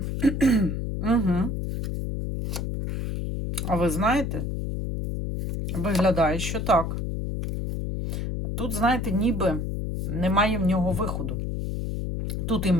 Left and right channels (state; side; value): noise; left; hum, 2 dB below the sound